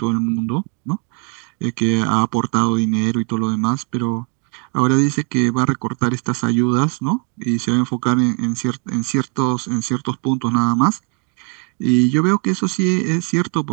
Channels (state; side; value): quieter; left; 37.2 dB